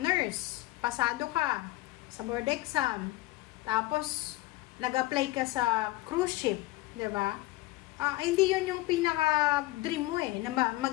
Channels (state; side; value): quieter; right; 18.7 dB